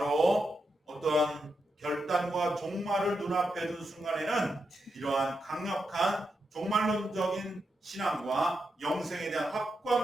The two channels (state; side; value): normal; both; correlation 0.86